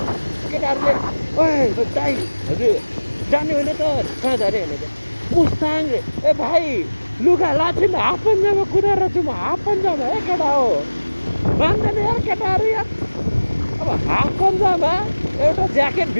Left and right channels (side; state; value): both; inverted; correlation -1.00